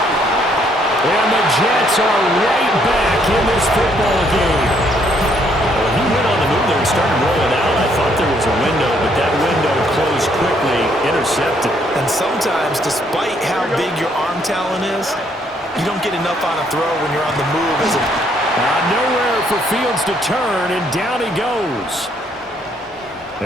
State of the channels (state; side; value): normal; both; correlation 0.69